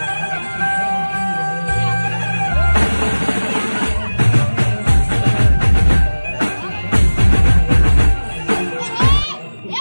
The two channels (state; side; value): inverted; both; correlation -1.00